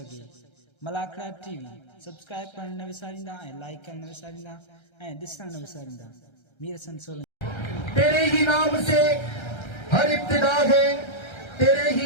मलाखड़ा टीवी सब्सक्राइब करण न विसारींदा ऐं लाइक करण न विसारींदा ऐं ॾिसण न विसारींदा। मीर हसन सोलंकी। तेरे ही नाम से हर इब्तिदा है, तेरे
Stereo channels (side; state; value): right; late; 1.3 ms